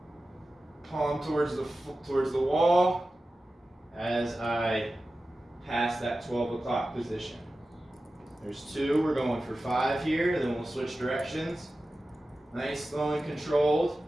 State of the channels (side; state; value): both; normal; correlation 0.94